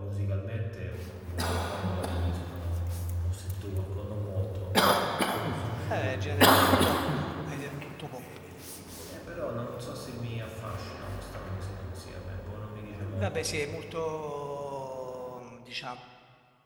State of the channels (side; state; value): both; identical; correlation 1.00